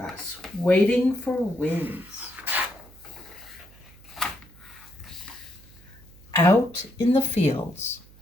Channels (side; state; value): right; noise; hum, 24 dB below the sound